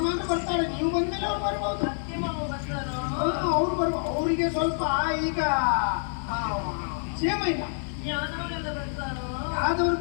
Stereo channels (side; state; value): right; silent; digital silence